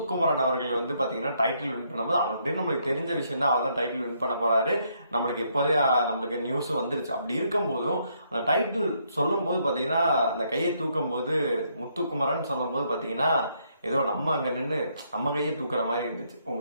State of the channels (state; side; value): inverted; both; correlation -0.73